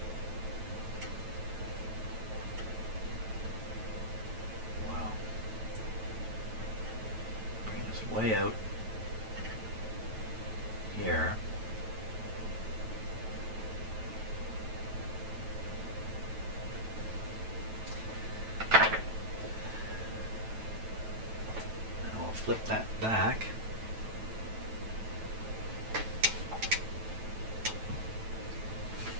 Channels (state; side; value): late; left; 9.1 ms